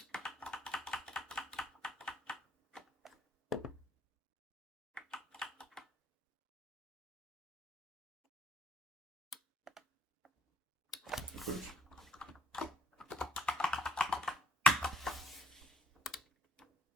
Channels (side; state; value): both; normal; correlation 0.65